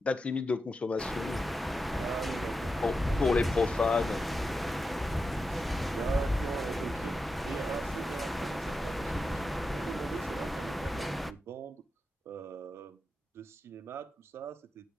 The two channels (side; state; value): both; normal; correlation 0.89